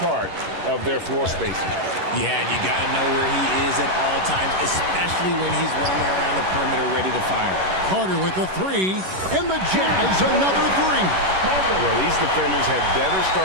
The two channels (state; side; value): late; left; 11 ms